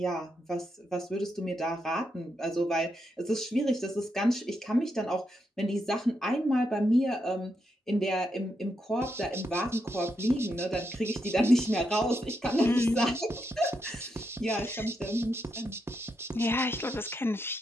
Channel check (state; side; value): normal; both; correlation 0.82